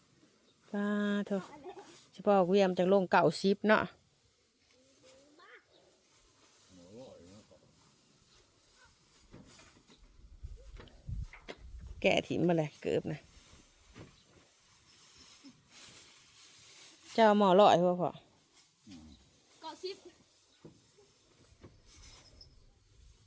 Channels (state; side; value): identical; both; correlation 1.00